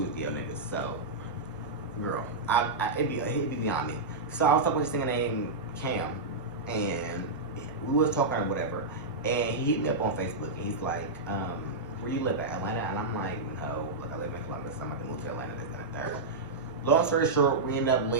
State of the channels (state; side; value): quieter; left; 3.4 dB